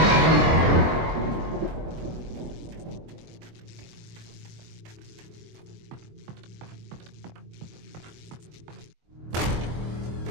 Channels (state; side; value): late; left; 23 ms